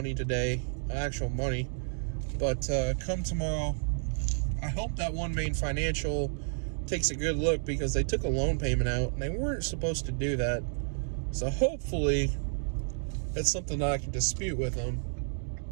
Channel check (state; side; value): silent; left; digital silence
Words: today, actual money. But come tomorrow, I hope that One Main Financial takes a good look, because they took a loan payment out and they weren't supposed to do that. So hopefully that's something that I can dispute with them.